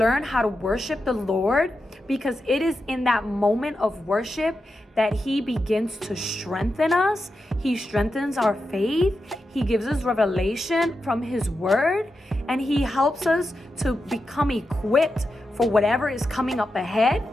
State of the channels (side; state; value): both; normal; correlation 0.89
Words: how to worship the Lord? Because it is in that moment of worship that He begins to strengthen us. He strengthens our faith. He gives us revelation from His word, and He helps us to become equipped for whatever is coming up ahead.